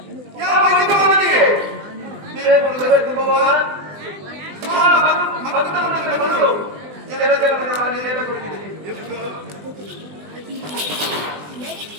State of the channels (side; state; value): left; late; 20 ms